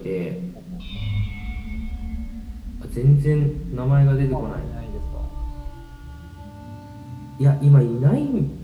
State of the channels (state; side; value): identical; both; correlation 1.00